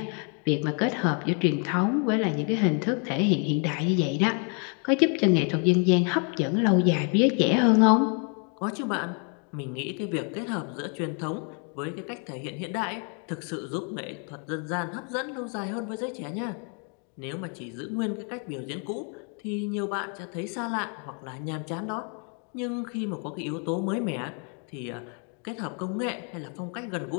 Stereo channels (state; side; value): quieter; right; 39.2 dB